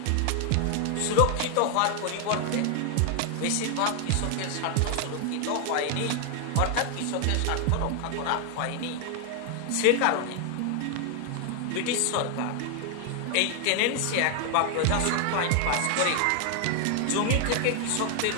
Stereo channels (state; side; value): different; both; correlation 0.00